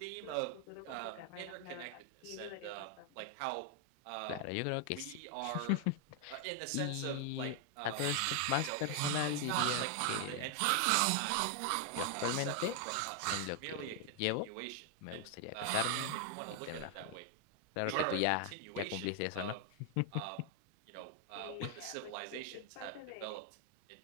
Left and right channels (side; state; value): both; different; correlation 0.00